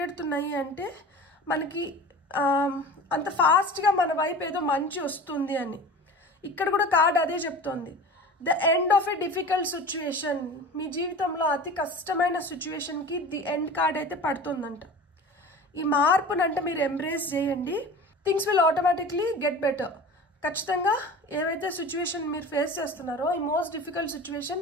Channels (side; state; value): both; normal; correlation 0.37